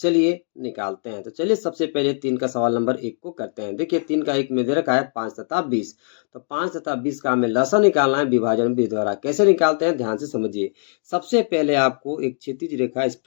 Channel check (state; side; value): silent; right; digital silence